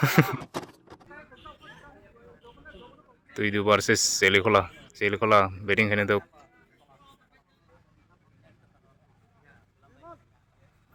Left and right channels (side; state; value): both; identical; correlation 1.00